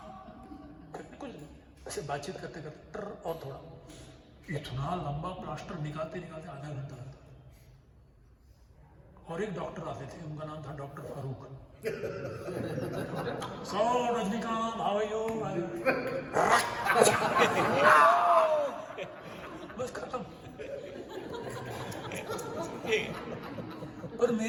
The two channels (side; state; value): both; identical; correlation 1.00